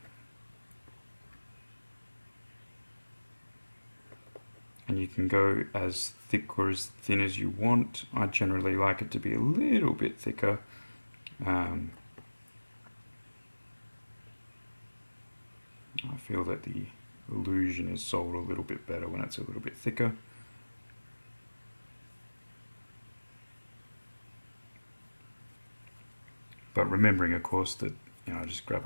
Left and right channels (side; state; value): both; inverted; correlation -1.00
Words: And you can go as thick or as thin as you want. I generally like it to be a little bit thicker. I feel that the illusion is sold a little bit better when it's a little bit thicker. But remembering, of course, that just